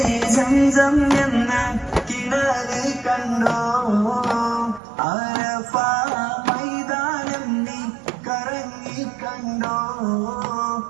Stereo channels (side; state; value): left; drops out; at 4.8 s